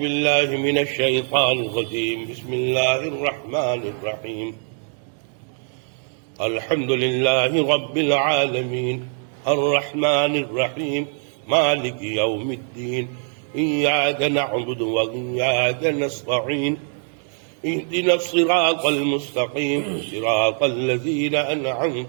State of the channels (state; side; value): silent; left; 56 dB below the other